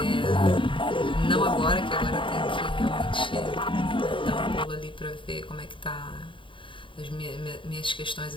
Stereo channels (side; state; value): right; late; 0.25 ms